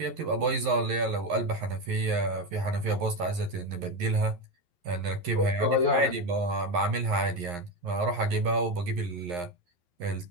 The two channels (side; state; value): left; late; 11 ms